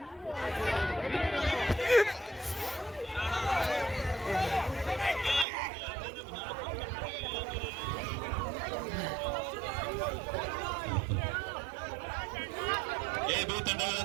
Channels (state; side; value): drops out; left; at 5.5 s